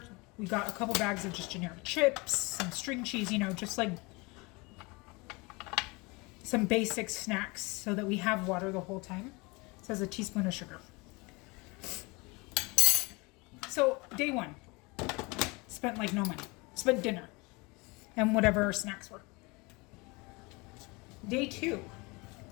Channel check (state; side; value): quieter; right; 26.3 dB